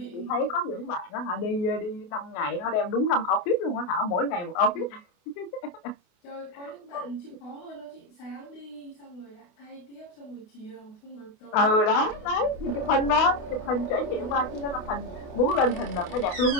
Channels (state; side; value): late; right; 28 ms